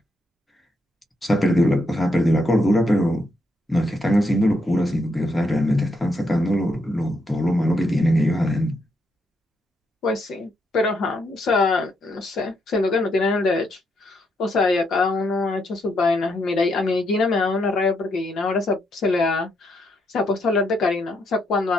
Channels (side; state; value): both; normal; correlation 0.78